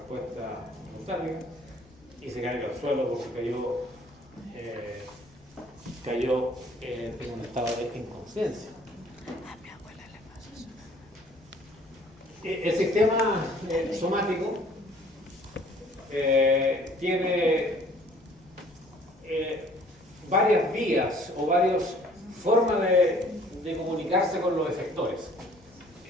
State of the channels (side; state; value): left; noise; rumble, 28 dB below the sound